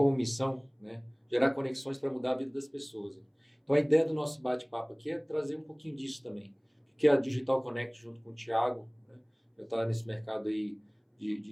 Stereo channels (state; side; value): identical; both; correlation 1.00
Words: missão, né, gerar conexões para mudar a vida das pessoas. Então a ideia do nosso bate-papo aqui é trazer um pouquinho disso também, que é a Digital Connect junto com o Thiago, né, já está nesse mercado aí